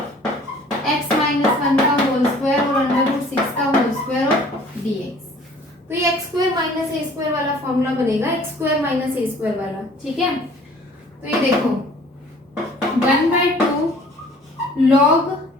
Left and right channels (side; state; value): both; normal; correlation 0.52